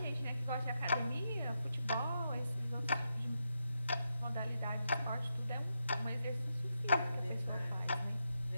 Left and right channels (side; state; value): both; inverted; correlation -0.85